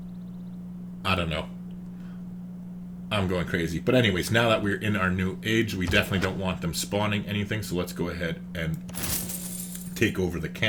I don't know. I'm going crazy. But anyways, now that we're in our new age, we definitely don't want them spawning anything. So let's go ahead and take over the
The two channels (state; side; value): identical; both; correlation 1.00